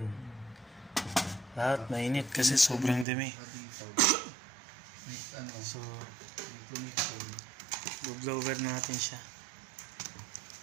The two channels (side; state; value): left; drops out; at 3.1 s